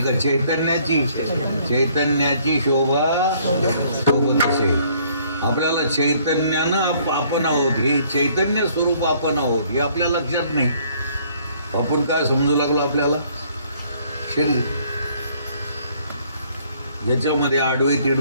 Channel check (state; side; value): inverted; both; correlation -0.62